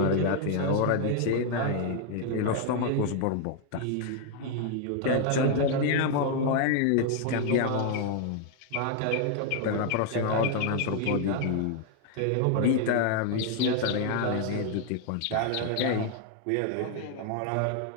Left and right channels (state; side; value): different; both; correlation 0.00